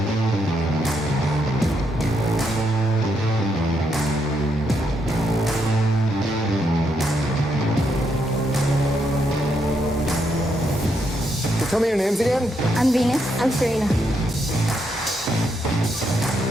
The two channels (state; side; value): normal; both; correlation 0.78